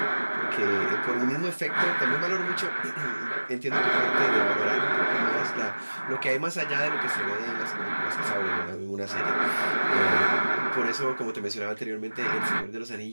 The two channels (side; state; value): both; inverted; correlation -1.00